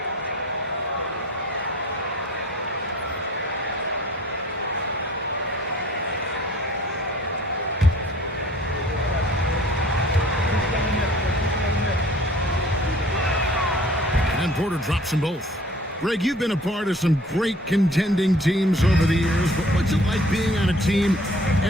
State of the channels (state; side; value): normal; both; correlation 0.51